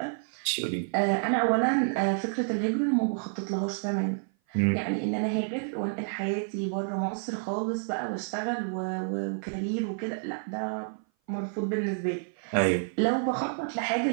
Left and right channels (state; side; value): silent; left; 56 dB below the other